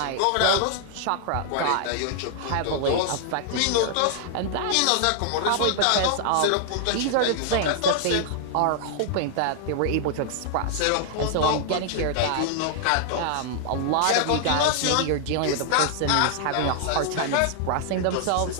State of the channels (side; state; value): both; different; correlation 0.00